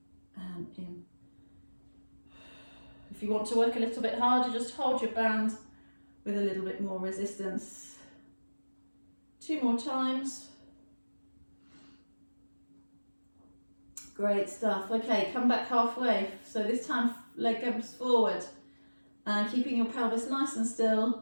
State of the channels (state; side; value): inverted; both; correlation -1.00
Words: and in. If you want to work a little bit harder, just hold your band with a little bit more resistance. 2 more times. Great stuff. Okay, come back halfway. So this time leg goes forward and keeping your pelvis nice and